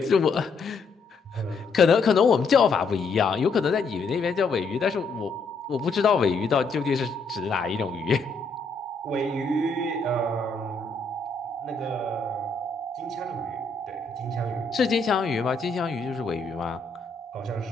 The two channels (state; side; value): quieter; right; 3.9 dB